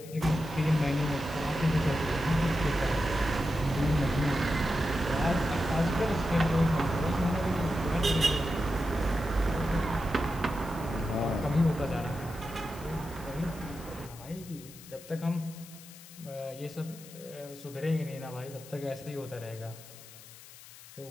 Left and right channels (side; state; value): left; noise; hiss, 18 dB below the sound